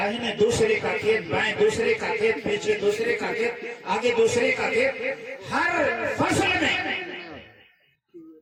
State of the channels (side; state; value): both; identical; correlation 1.00